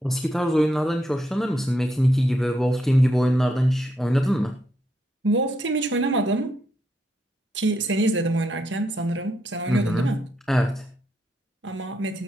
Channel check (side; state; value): both; normal; correlation 0.79